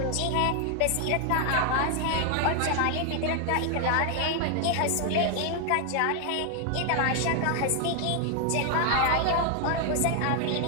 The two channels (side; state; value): both; different; correlation 0.00